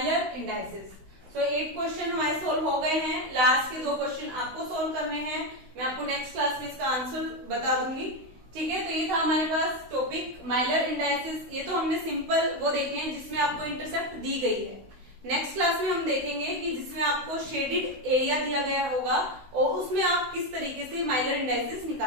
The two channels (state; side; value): late; left; 16 ms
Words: इंडाइसिस। सो 8 क्वेश्चन हमारे सोल्व हो गए हैं। लास्ट के 2 क्वेश्चन आपको सोल्व करने हैं, मैं आपको नेक्स्ट क्लास में इसका आंसर बता दूंगी। ठीक है, तो ये था हमारे पास टॉपिक माइलर इंडाइसिस। ये तो हमने सिंपल वो देखे हैं जिसमें आपको इंटरसेप्ट दी गई है। नेक्स्ट क्लास में हम देखेंगे कि जिसमें आपको शेडेड एरिया दिया गया होगा और उसमें आप किस तरीके से माइलर इंडाइसिस